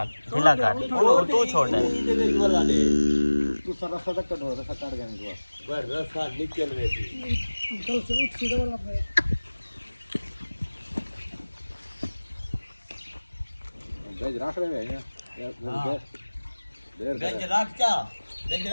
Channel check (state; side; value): inverted; both; correlation -1.00